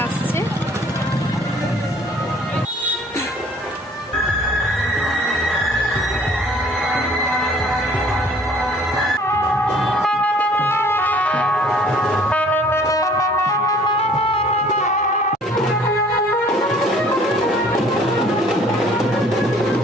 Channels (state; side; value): normal; both; correlation 0.55